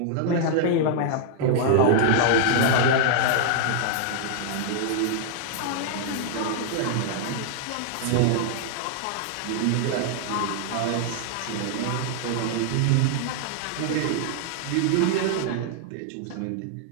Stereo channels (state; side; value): different; both; correlation -0.01